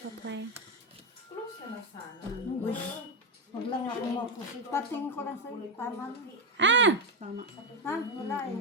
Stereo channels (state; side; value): normal; both; correlation 0.08